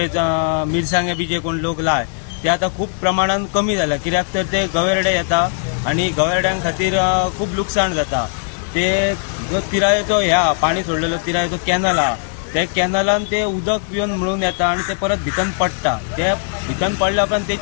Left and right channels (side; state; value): right; silent; digital silence